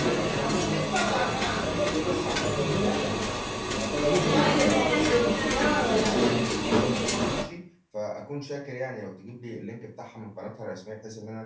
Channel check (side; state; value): both; identical; correlation 1.00